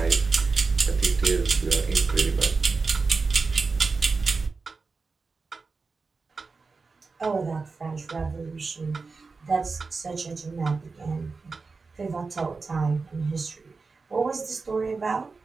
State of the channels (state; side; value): quieter; left; 4.3 dB